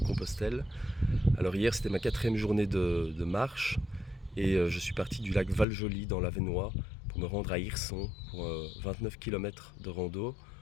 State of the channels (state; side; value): drops out; right; at 5.7 s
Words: Alors hier c'était ma quatrième journée de marche et je suis parti du lac Val-Joli dans l'Avesnois pour me rendre à Hirson pour 29 km de rando,